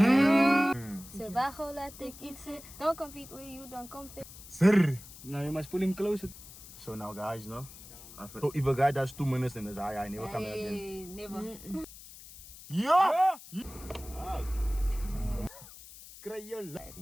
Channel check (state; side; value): noise; left; hiss, 17 dB below the sound